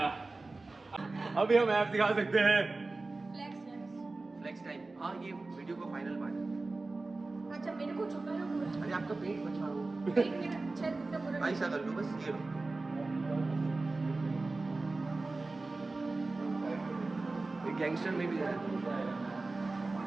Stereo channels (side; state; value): left; quieter; 3.4 dB